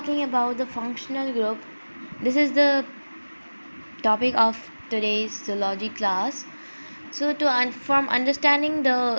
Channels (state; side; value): inverted; both; correlation -1.00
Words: about the functional group, this is the topic of today's zoology class. So from understanding